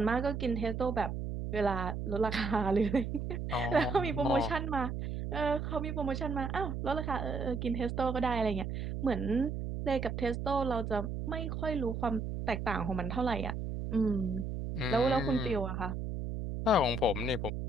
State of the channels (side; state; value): right; noise; hum, 4 dB below the sound